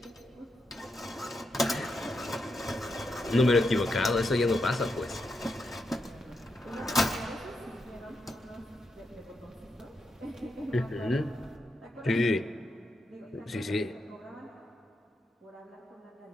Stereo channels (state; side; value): normal; both; correlation 0.84